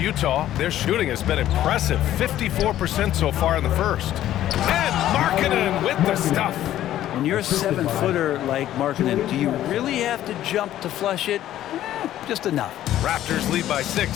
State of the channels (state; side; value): quieter; right; 12.8 dB